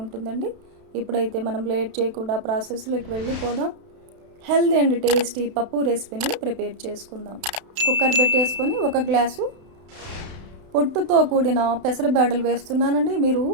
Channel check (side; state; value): left; late; 32 ms